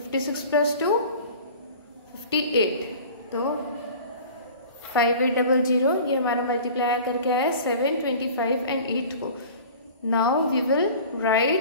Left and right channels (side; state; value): both; inverted; correlation -0.42